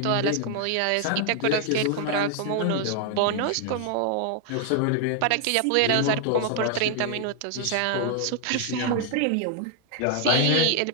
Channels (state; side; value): different; both; correlation 0.00